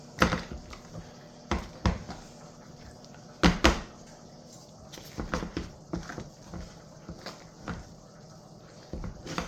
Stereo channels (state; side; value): identical; both; correlation 1.00